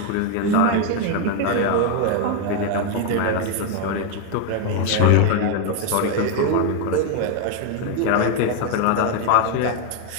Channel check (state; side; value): different; both; correlation 0.01